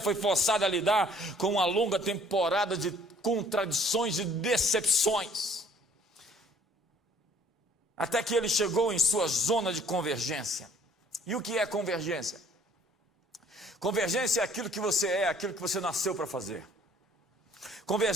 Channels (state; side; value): normal; both; correlation 0.58